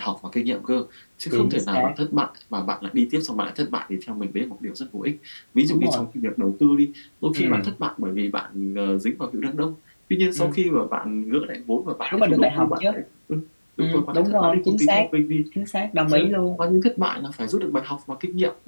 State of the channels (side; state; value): both; inverted; correlation -1.00